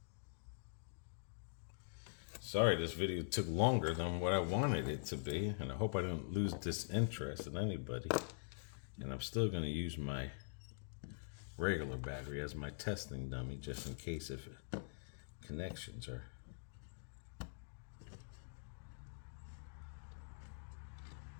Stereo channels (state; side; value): silent; right; digital silence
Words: Sorry, this video took longer than what I wanted it to be. And I hope I don't lose disinterest in anybody. And I'm still going to use my regular battery as my testing dummy, just in case if connections are...